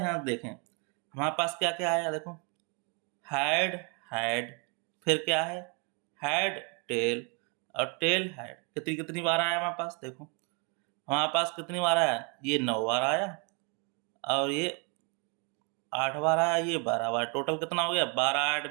देखें हमारे पास क्या क्या आया। देखो हेड हेड, फिर क्या है हेड टेल और टेल हेड कितनी कितनी बार आया हमारे पास। देखो हमारे पास कितनी बार आया, ये 9 बार आया और ये 8 बार आया, ये 12 बार। टोटल कितना हो गया 12, 8,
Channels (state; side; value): quieter; left; 34.7 dB